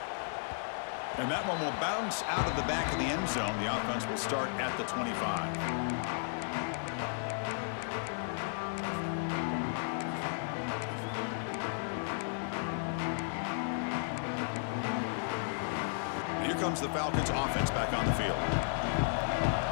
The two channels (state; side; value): silent; right; digital silence